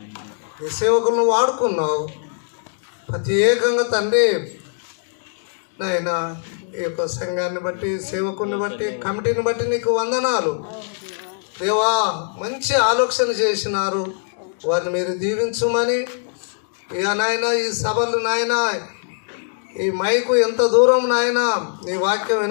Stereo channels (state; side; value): silent; right; 65 dB below the other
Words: నీ సేవకులను వాడుకున్నావు ప్రత్యేకంగా తండ్రి. నాయన ఈ యొక్క సంఘాన్ని బట్టి, సేవకుల్ని బట్టి, కమిటీని బట్టి నీకు వందనాలు దేవా. మంచి ఆలోచన చేసినారు, వారిని మీరు దీవించమని. ఇక నాయన ఈ సభలు నాయన, ఈ మైకు ఎంత దూరం నాయన నీ వాక్యం